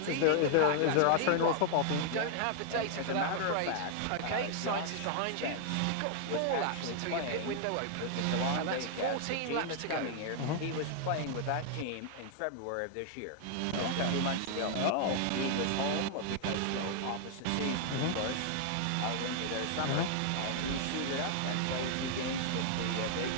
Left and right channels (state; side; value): different; both; correlation 0.00